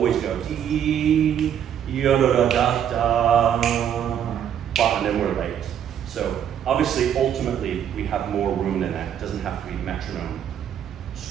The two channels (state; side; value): quieter; left; 9.3 dB